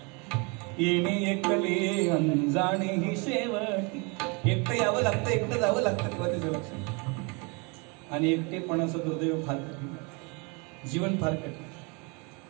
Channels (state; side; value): quieter; left; 31.1 dB